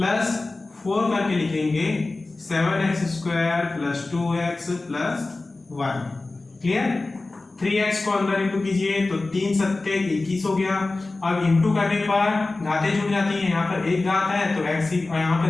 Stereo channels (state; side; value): quieter; right; 3.3 dB